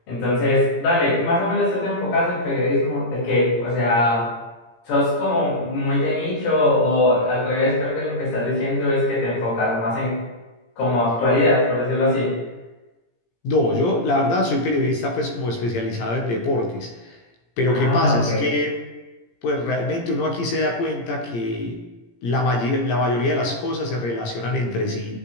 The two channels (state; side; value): late; right; 17 ms